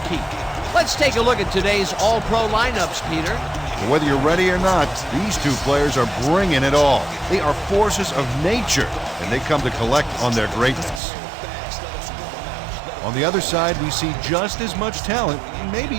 Let's take a look at today's all-pro lineups, Peter. Whether you're ready or not, these two players are bringing it all. They are forces of nature, and they come to collect on their greatness. On the other side, we see just as much talent, maybe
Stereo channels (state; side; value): drops out; left; at 11.0 s